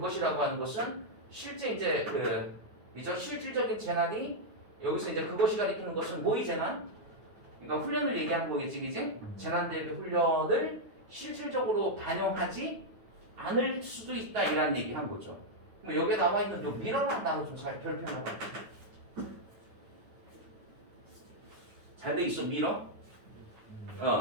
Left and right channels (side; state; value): left; late; 9.4 ms